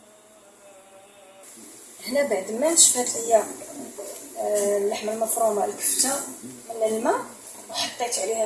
هنا بعد ما نشفات ليا اللحمه المفرومه الكفته من الماء، وحطيت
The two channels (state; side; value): identical; both; correlation 1.00